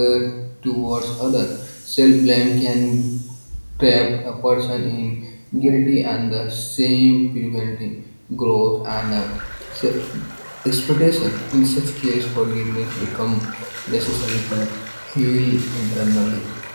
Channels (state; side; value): inverted; both; correlation -1.00